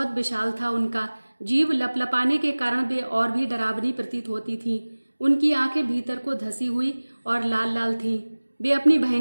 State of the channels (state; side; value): inverted; both; correlation -1.00